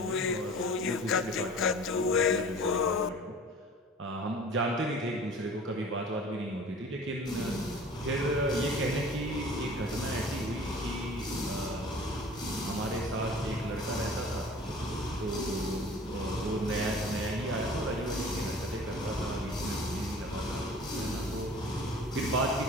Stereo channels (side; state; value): both; normal; correlation 0.44